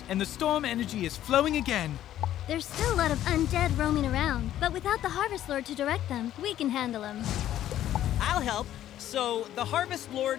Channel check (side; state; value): right; quieter; 12.2 dB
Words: and the storm energy is flowing again. There's still a lot of undead roaming around, but without the Harvest Lord to direct them, we can handle them. I'll help. So, the Harvest